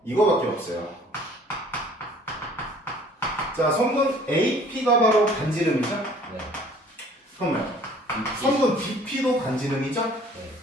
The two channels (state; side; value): normal; both; correlation 0.53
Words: 이거밖에 없어요. 자 성분 AP가 바로 반지름이죠? 네. 그러면 성분 BP도 반지름이죠? 네.